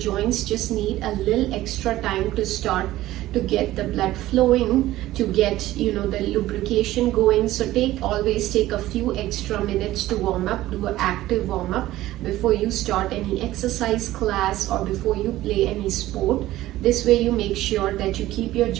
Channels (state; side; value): quieter; left; 15.7 dB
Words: just need a little extra time to start to get the blood flowing, to get the lubrication going. So always take a few extra minutes to warm up, do an active warm up before you start any exercise class or before you play any sport. This way you make sure that you keep your